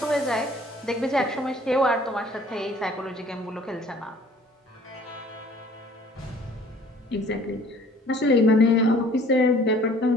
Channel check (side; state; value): both; normal; correlation 0.53